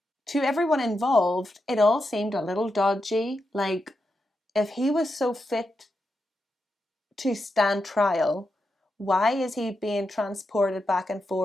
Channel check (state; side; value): normal; both; correlation 0.86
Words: To everyone involved, it all seemed a little dodgy. Like, if he was so fit to stand trial, why is he being transported back and